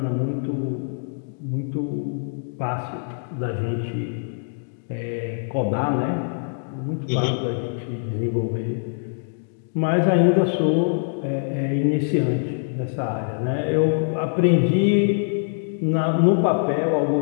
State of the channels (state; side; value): silent; right; digital silence